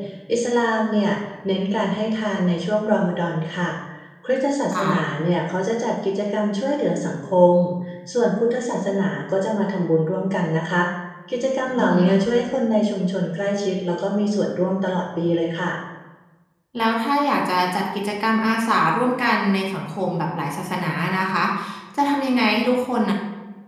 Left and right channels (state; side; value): identical; both; correlation 1.00